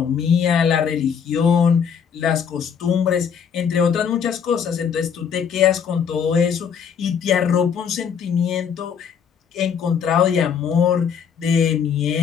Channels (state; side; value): quieter; right; 7.2 dB